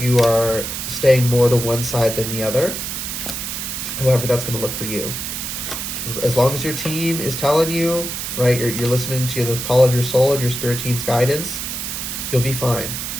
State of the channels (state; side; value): noise; right; hiss, 5 dB below the sound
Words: you are staying more to one side than the other. However that's going to look for you. As long as your team is telling you, right, you're listening to the call of your soul and your spirit team's guidance, you'll be fine.